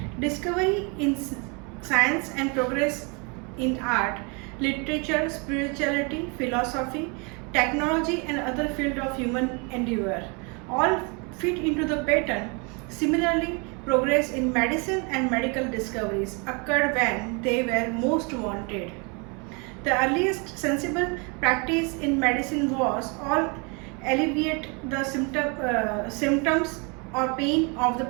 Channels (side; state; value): left; quieter; 32.3 dB